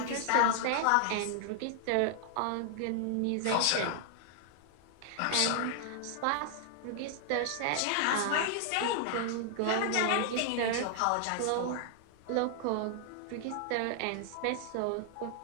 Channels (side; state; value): both; different; correlation 0.00